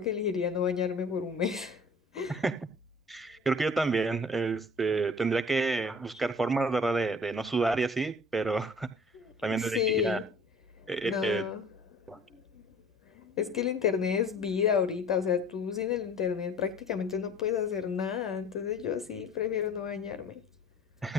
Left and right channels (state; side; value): normal; both; correlation 0.48